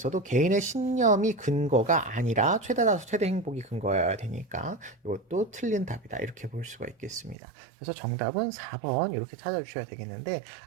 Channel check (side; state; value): left; drops out; at 7.4 s